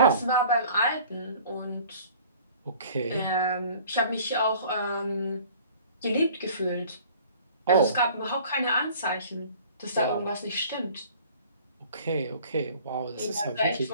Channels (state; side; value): inverted; both; correlation -0.50